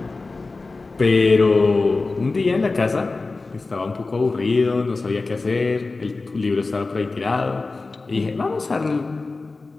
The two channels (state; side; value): quieter; right; 3.6 dB